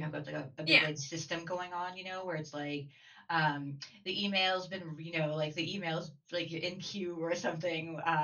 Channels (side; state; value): both; identical; correlation 1.00